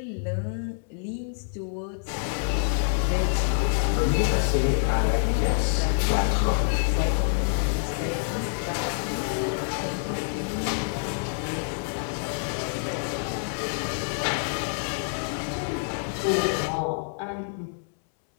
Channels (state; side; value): silent; right; 60 dB below the other